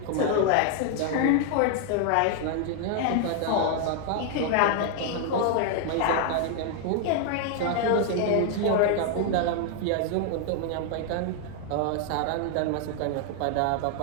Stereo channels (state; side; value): different; both; correlation 0.00